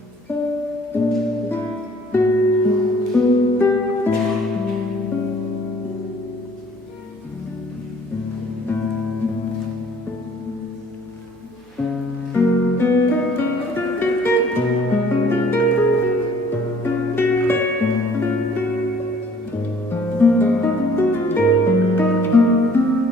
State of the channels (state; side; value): normal; both; correlation 0.57